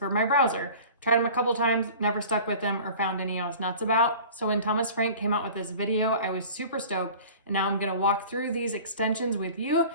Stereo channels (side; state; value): both; inverted; correlation -0.41